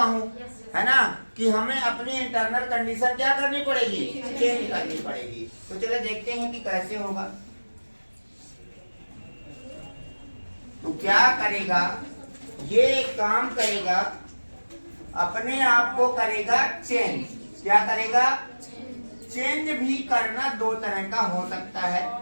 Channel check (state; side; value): inverted; both; correlation -1.00